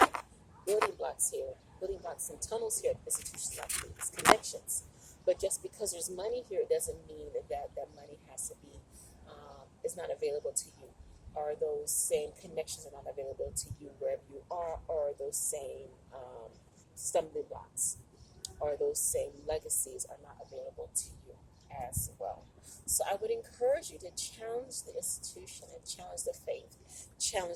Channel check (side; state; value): both; identical; correlation 1.00